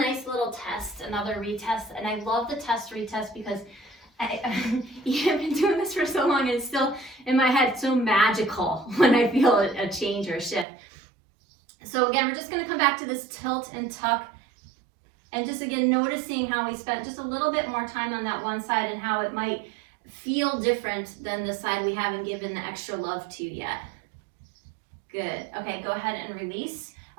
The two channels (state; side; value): drops out; left; at 10.7 s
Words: little test, another retest, and I love the test retest because I've been doing this for so long and it's still in my head so magical when I feel a change or a shift. So again, we're just going to come back to this tilt and tuck and just again noticing how we spent just a little bit more time on that one side and how it might feel different than the side we haven't given the extra love to yet. Good. Okay, go ahead and release.